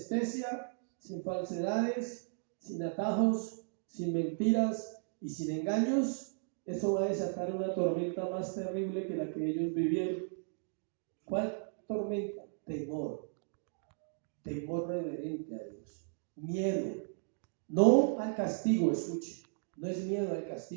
sin falsedades, sin atajos, sin mentiras y sin engaños. Eso va a desatar una tormenta más terrible que la que ellos vivieron. ¿Cuál tormenta? Temor. Temor reverente a Dios. Miedo. No al castigo, escuche. No es miedo al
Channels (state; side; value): silent; left; digital silence